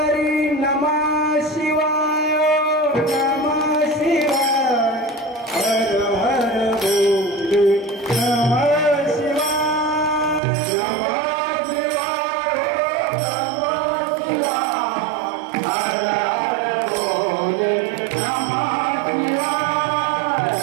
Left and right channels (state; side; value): drops out; left; at 10.4 s